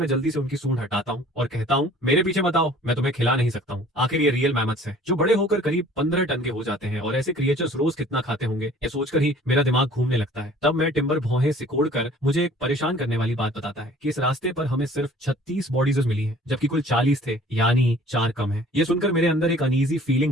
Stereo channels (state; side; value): normal; both; correlation 0.51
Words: जल्दी से उनकी सूंड हटाता हूँ और कहता हूँ, मेरे पीछे मत आओ, मैं तुम्हें खिला नहीं सकता हूँ। आखिर ये रियल मैमथ्स हैं, जो बड़े होकर करीब 15 टन के हो जाते हैं, और ऐसे क्रिएचर्स रोज कितना खाते होंगे, ये सोचकर ही मेरा दिमाग घूमने लगता है। तब मैं टिम्बर भौहें सिकोड़ कर मुझे एक परेशान करने वाली बात बताता है कि इस रास्ते पर हमें सिर्फ 36 बॉडीज मिली हैं, जबकि कुल 40 थे, यानी 4 कम है। ये सुनकर मेरे अंदर एक अनईजी